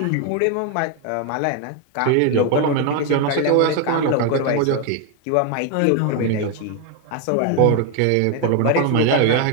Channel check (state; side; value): different; both; correlation 0.01